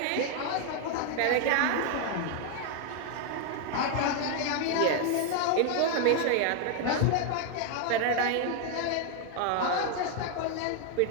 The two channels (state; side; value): different; both; correlation 0.00